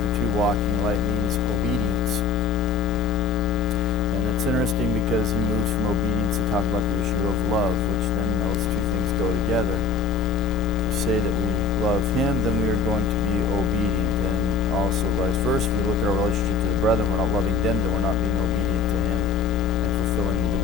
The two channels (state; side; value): quieter; right; 4.9 dB